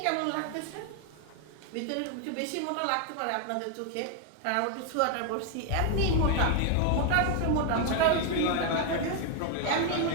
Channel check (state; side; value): different; both; correlation 0.01